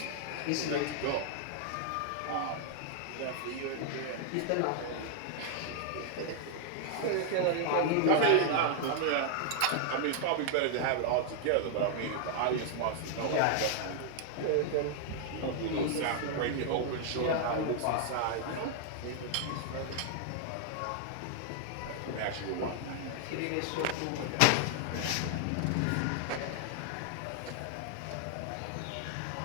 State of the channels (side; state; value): both; different; correlation 0.00